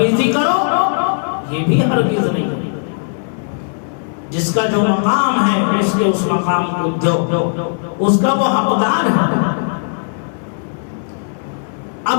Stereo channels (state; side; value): silent; right; digital silence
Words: کرو، یہ بھی ہرگز نہیں۔ جس کا جو مقام ہے اس کے اس مقام کو دو، اس کا وہ حقدار ہے۔